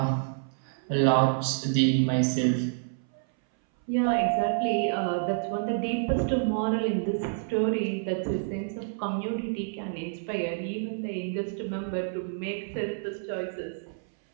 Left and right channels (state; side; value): silent; left; 59 dB below the other